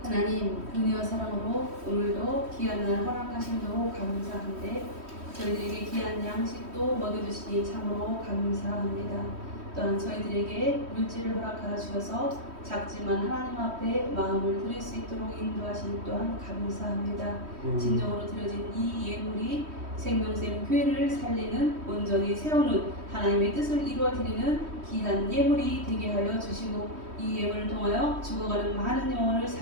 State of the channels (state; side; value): late; left; 3.1 ms